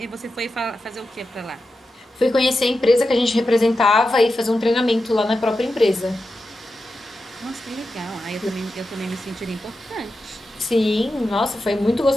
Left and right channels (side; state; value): both; normal; correlation 0.90